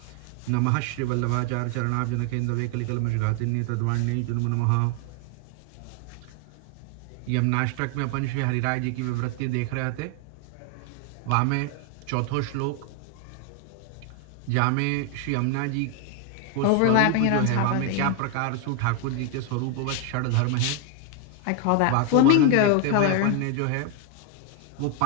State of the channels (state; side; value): different; both; correlation 0.00